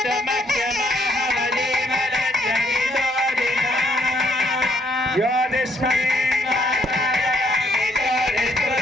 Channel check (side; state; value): both; normal; correlation 0.70